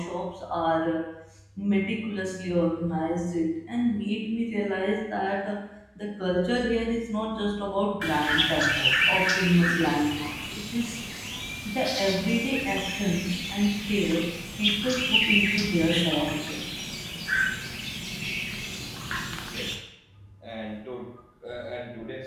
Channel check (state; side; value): identical; both; correlation 1.00